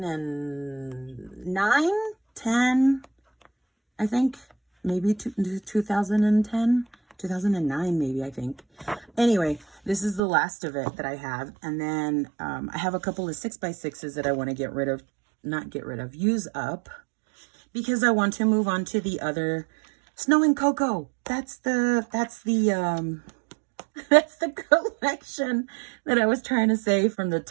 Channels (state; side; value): drops out; left; at 10.2 s